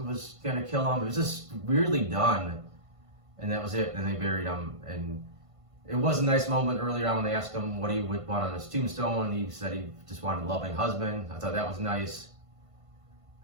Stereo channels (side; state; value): left; late; 1.5 ms